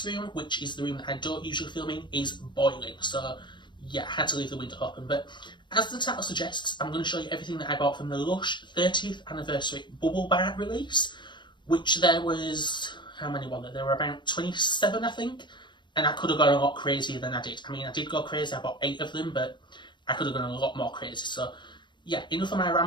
room, which is the room that I don't usually film in, is boiling. So yeah, I had to leave the window open. But as the title suggests, I'm going to show you everything that I bought from the Lush 30th anniversary bubble bar release, which there was, how many were there? There were about 27, I think, and I could have gone a lot crazier than I did. I mean, I did go crazy, I bought 8 of them, but I could have gone a lot more crazy. So yeah, enough of my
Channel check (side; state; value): right; late; 0.22 ms